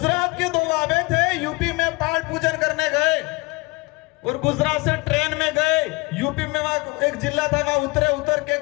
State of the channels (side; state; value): right; quieter; 25.1 dB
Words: के दो बाबे थे, यूपी में पाठ पूजन करने गए और गुजरात से ट्रेन में गए। यूपी में वहां एक जिला था, वहां उतर के